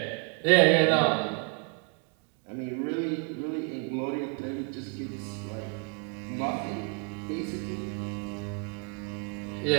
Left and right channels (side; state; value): left; quieter; 35.1 dB